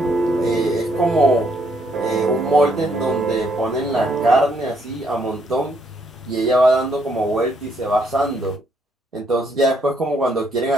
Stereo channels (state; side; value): normal; both; correlation 0.72